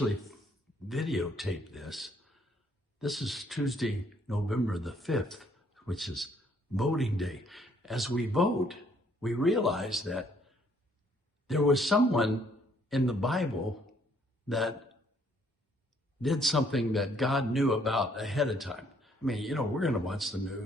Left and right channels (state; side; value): normal; both; correlation 0.66